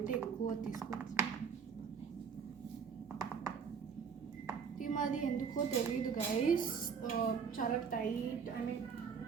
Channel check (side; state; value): left; quieter; 6.4 dB